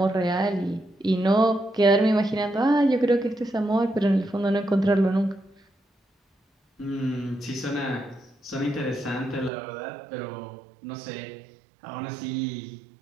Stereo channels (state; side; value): drops out; left; at 9.5 s